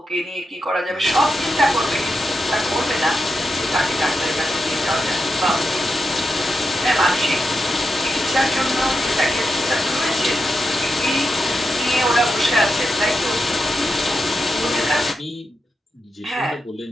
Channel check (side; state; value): both; normal; correlation 0.87